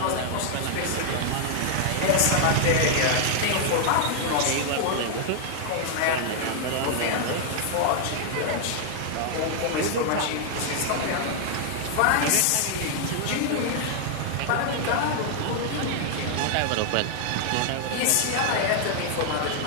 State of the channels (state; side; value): different; both; correlation 0.00